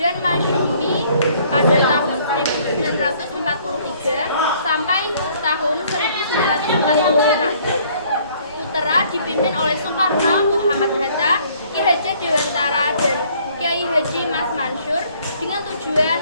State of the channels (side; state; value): both; inverted; correlation -0.60